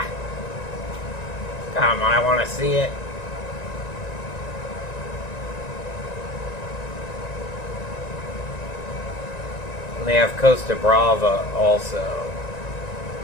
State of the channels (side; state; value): right; late; 1.9 ms